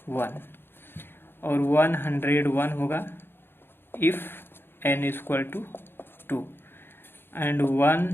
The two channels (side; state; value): right; late; 0.10 ms